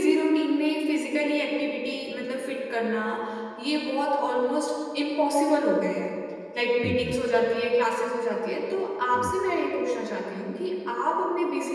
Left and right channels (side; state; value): both; identical; correlation 1.00